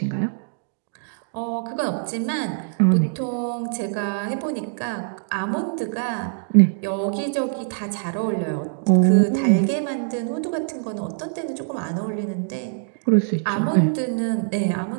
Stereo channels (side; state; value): left; silent; digital silence